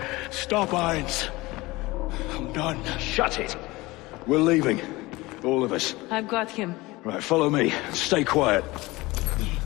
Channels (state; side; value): quieter; right; 21.0 dB